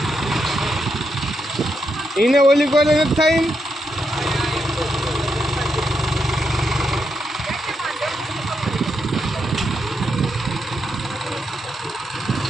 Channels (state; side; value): normal; both; correlation 0.82